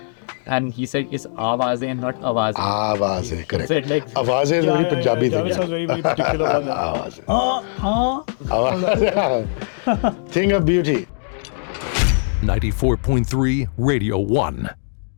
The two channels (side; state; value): right; silent; digital silence